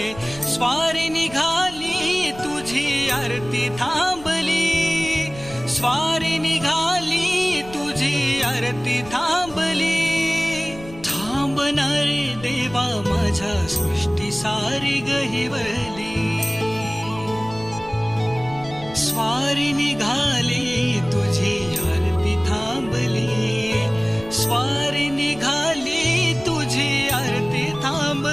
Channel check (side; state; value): left; noise; rumble, 17 dB below the sound